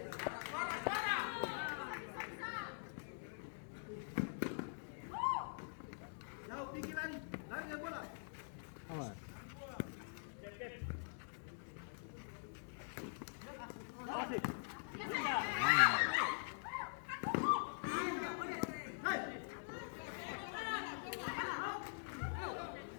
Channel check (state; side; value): silent; right; digital silence